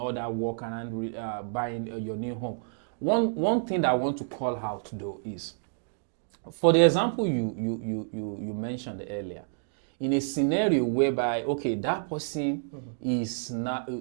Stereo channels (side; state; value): left; silent; digital silence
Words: that work and buying your new home. One thing that I want to call out though is, for the example you mentioned earlier, in a scenario whereby that person is